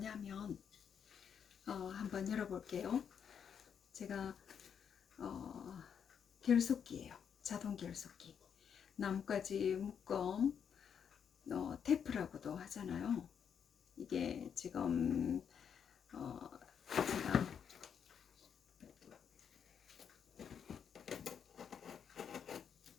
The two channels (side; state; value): right; quieter; 7.6 dB